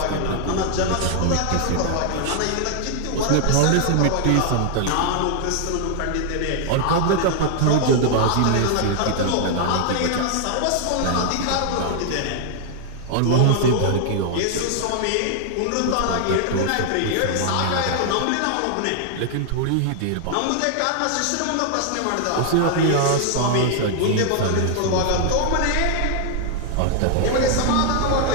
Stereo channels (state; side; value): different; both; correlation 0.00